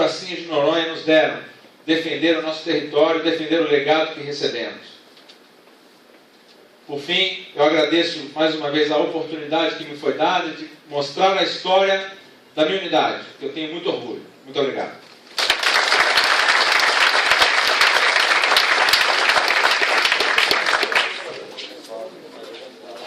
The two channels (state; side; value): identical; both; correlation 1.00